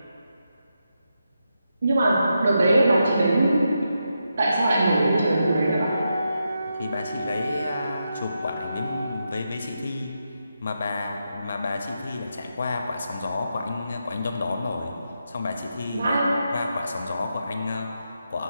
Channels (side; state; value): both; inverted; correlation -0.85